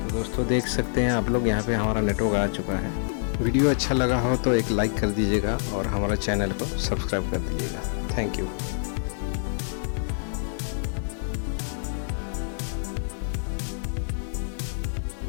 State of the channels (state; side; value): silent; right; digital silence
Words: दोस्तों देख सकते हैं आप लोग, यहाँ पे हमारा नेटवर्क आ चुका है। वीडियो अच्छा लगा हो तो एक लाइक कर दीजिएगा और हमारा चैनल को सब्सक्राइब कर दीजिएगा। Thank you.